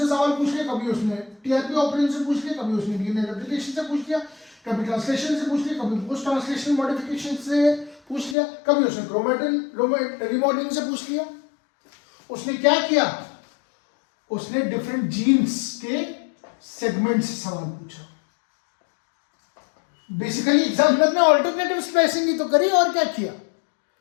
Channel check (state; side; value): drops out; right; at 8.3 s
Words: सवाल पूछ लिया, कभी उसने टीआरपी ऑपरेशन से पूछ लिया, कभी उसने डीएनए रेप्लिकेशन से पूछ लिया, कभी ट्रांसलेशन से पूछ लिया, कभी पोस्ट ट्रांसलेशन मॉडिफिकेशन से पूछ लिया, कभी उसने क्रोमेटिन रिमॉडलिंग से पूछ लिया। उसने क्या किया, उसने डिफरेंट जीन्स के सेगमेंट से सवाल पूछा। बेसिकली एग्जामिनर ने ऑल्टरनेटिव स्प्लाइसिंग ही तो करी, और क्या किया,